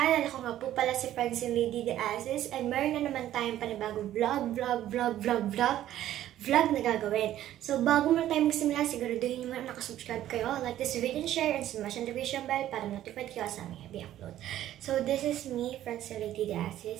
Ako nga po pala si Francine Lady De Asis and meron na naman tayong panibagong vlog na gagawin. So, bago muna tayo magsimula, siguraduhin nyo muna nakasubscribe kayo, like this video and share, and smash the notification bell para notified kayo sa aming heavy upload. So, this is me, Francine Lady De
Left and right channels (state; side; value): quieter; left; 12.7 dB